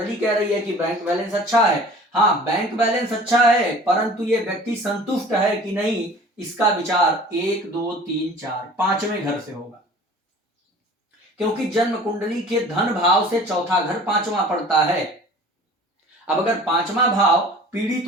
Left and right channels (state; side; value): normal; both; correlation 0.45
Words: कह रही है कि बैंक बैलेंस अच्छा है। हाँ, बैंक बैलेंस अच्छा है, परंतु ये व्यक्ति संतुष्ट है कि नहीं, इसका विचार 1 2 3 4 5वें घर से होगा, क्योंकि जन्म कुंडली के धन भाव से चौथा घर 5वां पड़ता है। अब अगर 5वां भाव